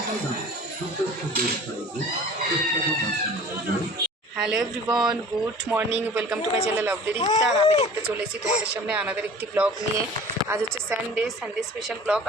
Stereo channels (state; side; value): normal; both; correlation 0.44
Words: everyone, good morning, welcome to my channel of Rikta. আর আমি দেখতে চলে এসেছি তোমাদের সামনে আনাদের একটি ব্লগ নিয়ে। আজ হচ্ছে সানডে স্পেশাল ব্লগ।